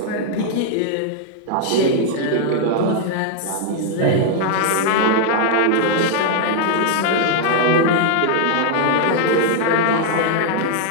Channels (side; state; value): both; different; correlation 0.00